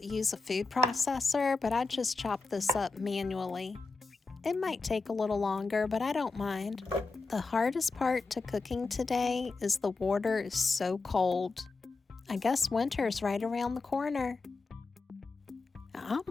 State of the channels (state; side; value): quieter; right; 3.9 dB